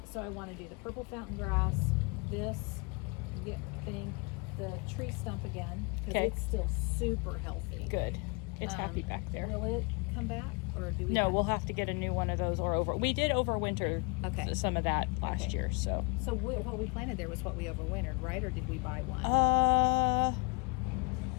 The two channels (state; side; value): quieter; right; 30.6 dB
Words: so I want to do the purple fountain grass, this thing, the tree stump again, because Okay. it's still super healthy. Good. It's happy back there. Will it come back, or do we? No, we'll have to get a new one of those or over. We did overwinter Okay. some of that last Okay. year, so. So what we planted there was what we overwintered, right? Or did we buy one? I